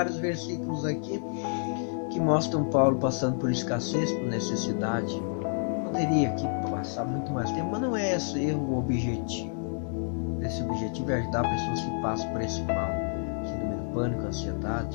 versículos aqui que mostram Paulo passando por escassez, por necessidade. Poderia aqui passar muito mais tempo, mas não é esse o objetivo. Esse objetivo é ajudar pessoas que passam por esse mal, síndrome do pânico,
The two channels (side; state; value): right; silent; 59 dB below the other